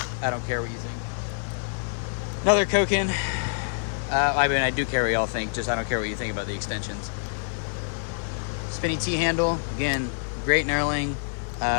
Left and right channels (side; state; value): right; silent; digital silence